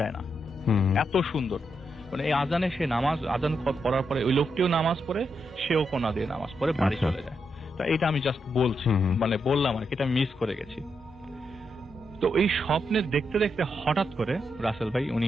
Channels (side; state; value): both; normal; correlation 0.82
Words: না, এত সুন্দর। মানে এই আজানে সে আজান পড়ার পরে ওই লোকটিও নামাজ পড়ে, সেও কোনা দিয়ে নামাজ পড়ে বাড়ি চলে যায়। তো এটা আমি জাস্ট বলছি, মানে বললাম আর কি, এটা মিস করে গেছি। তো এই স্বপ্নে দেখতে দেখতে হঠাৎ করে রাসেল ভাই